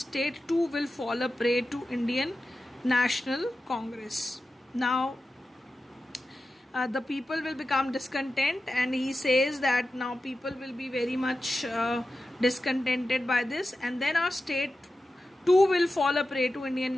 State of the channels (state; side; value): normal; both; correlation 0.92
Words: too will fall a prey to Indian National Congress. Now the people will become discontent, and he says that now people will be very much discontented by this, and then our state too will fall a prey to Indian